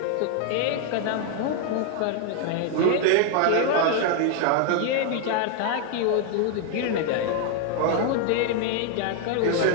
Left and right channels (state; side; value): different; both; correlation 0.00